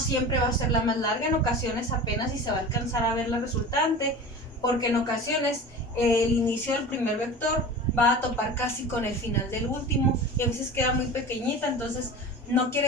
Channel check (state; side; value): normal; both; correlation 0.34